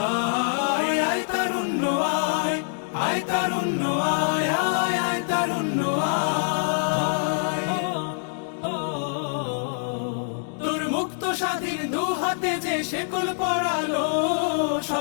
আয় তারুণ্য আয়, আয় তারুণ্য আয় আয় আয় তারুণ্য আয়। তোর মুক্ত স্বাধীন দু হাতে যে শেকল পরালো,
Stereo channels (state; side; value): silent; right; 61 dB below the other